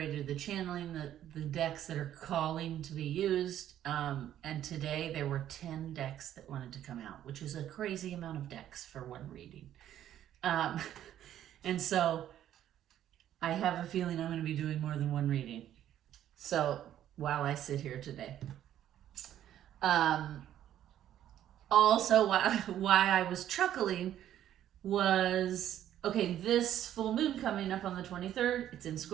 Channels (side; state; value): left; quieter; 11.4 dB